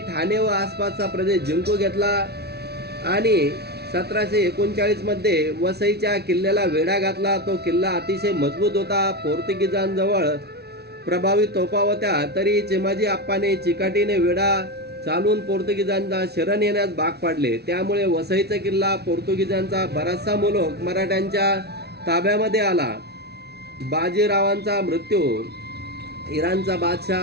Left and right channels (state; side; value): late; left; 0.48 ms